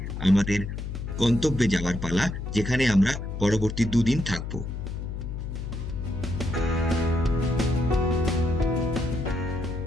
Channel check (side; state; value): left; noise; hum, 6 dB below the sound